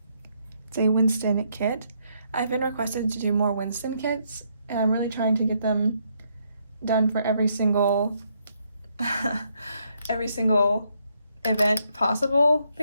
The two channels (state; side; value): inverted; both; correlation -0.74